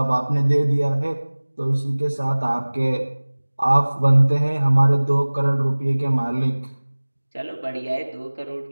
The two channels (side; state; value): both; inverted; correlation -1.00